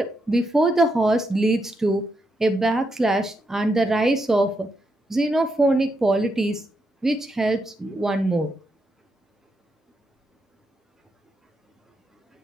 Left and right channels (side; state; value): both; normal; correlation 0.82